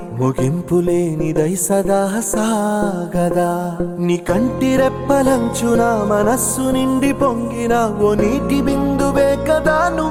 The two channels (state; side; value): identical; both; correlation 1.00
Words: ముగింపులేనిదై సదా సాగదా. నీ కంటి రెప్పలంచున మనస్సు నిండి పొంగిన ఓ నీటి బిందువే కదా